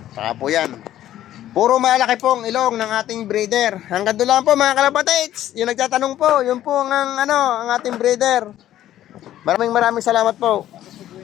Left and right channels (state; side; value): quieter; right; 12.7 dB